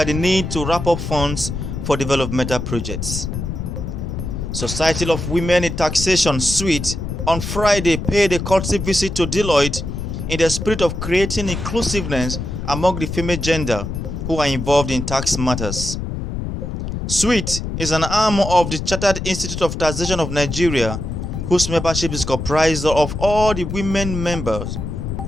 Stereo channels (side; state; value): left; noise; rumble, 5 dB below the sound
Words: the need to wrap up funds for developmental projects. Society of Women in Taxation SWIT on Friday paid a courtesy visit to Deloitte in the spirit of creating inclusiveness among the female gender who are involved in tax matters. SWIT is an arm of the Chartered Institute of Taxation of Nigeria, whose membership is comprised of all the women members